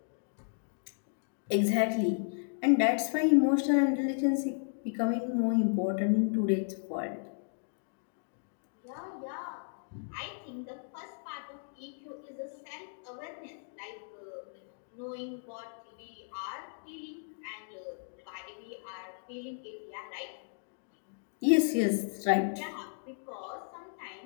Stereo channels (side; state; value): right; silent; digital silence